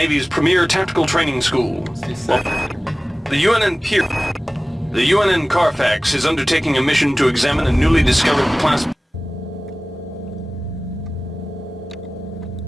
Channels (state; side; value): normal; both; correlation 0.98